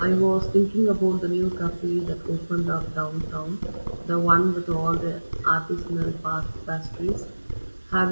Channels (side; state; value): both; inverted; correlation -1.00